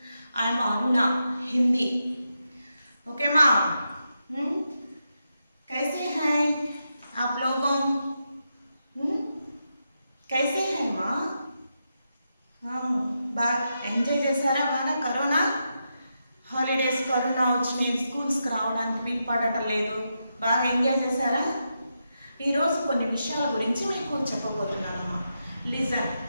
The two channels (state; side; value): inverted; both; correlation -0.86